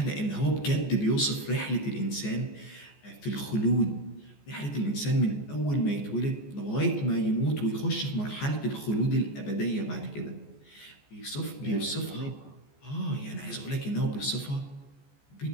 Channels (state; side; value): late; right; 14 ms